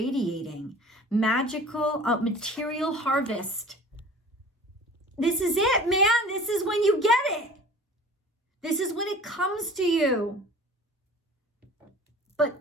Magical material harvest. This is it, man. This is when you get it. This is when it comes to you. But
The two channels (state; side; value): normal; both; correlation 0.43